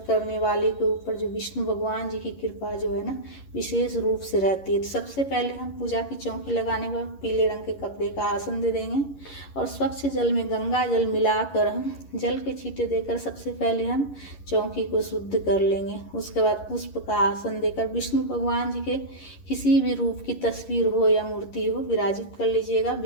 करने वाले के ऊपर जो विष्णु भगवान जी की कृपा जो है ना विशेष रूप से रहती है। तो सबसे पहले हम पूजा की चौकी लगाने के बाद पीले रंग के कपड़े का आसन दे देंगे और स्वच्छ जल में गंगा जल मिलाकर हम जल के छींटे देकर सबसे पहले हम चौकी को शुद्ध कर लेंगे। उसके बाद पुष्प का आसन देकर विष्णु भगवान जी के किसी भी रूप की तस्वीर हो या मूर्ति हो विराजित कर लीजिएगा।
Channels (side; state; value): right; late; 11 ms